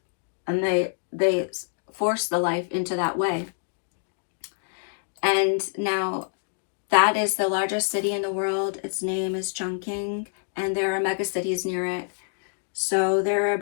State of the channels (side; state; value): right; silent; digital silence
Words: and they force the life into that way. And now that is the largest city in the world. Its name is Chongqing, and there are mega cities near it. So there are